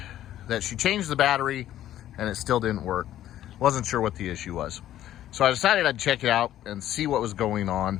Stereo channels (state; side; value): quieter; right; 12.5 dB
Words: that she changed the battery and it still didn't work. Wasn't sure what the issue was. So I decided I'd check it out and see what was going